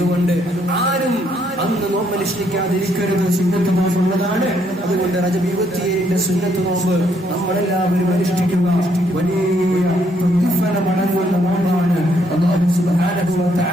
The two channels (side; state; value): both; normal; correlation 0.71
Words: ആരും അന്ന് നോമ്പനുഷ്ഠിക്കാതിരിക്കരുത്. സുന്നത്ത് നോമ്പുള്ളതാണ്. അതുകൊണ്ട് റജബ് 27 സുന്നത്ത് നോമ്പ് നമ്മളെല്ലാവരും അനുഷ്ഠിക്കുക. വലിയ പ്രതിഫലമടങ്ങുന്ന നോമ്പാണ്. അല്ലാഹു സുബ്ഹാനഹു വ